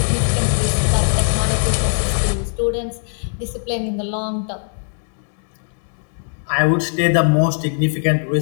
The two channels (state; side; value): silent; right; 66 dB below the other